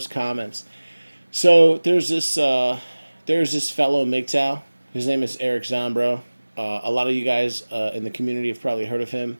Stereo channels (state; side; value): inverted; both; correlation -1.00